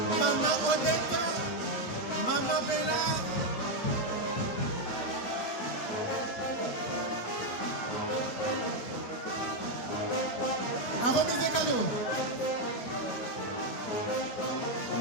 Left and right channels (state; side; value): late; right; 9.0 ms